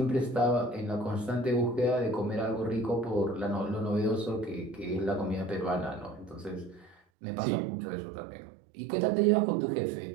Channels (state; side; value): drops out; left; at 7.0 s